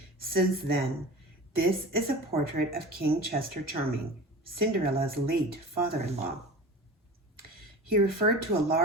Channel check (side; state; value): both; normal; correlation 0.34